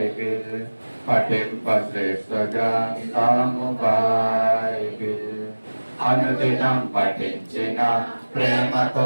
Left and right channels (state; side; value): inverted; both; correlation -1.00